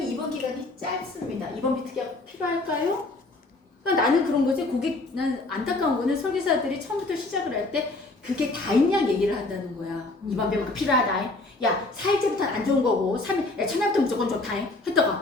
입원 기간이 짧습니다. 입원비 특약 필요할까요? 그러니까 나는 그런 거지. 난 안타까운 거는 설계사들이 처음부터 시작을 할 때 그게 다 있냐 얘기를 한다는 거야. 입원비가 필요하다. 야 4일째부터는 안 좋은 거고 3일, 야 첫날부터 무조건 좋다.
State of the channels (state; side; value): quieter; right; 3.0 dB